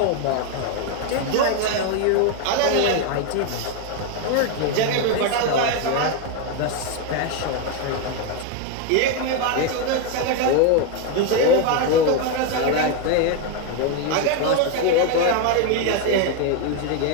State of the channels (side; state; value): both; different; correlation 0.02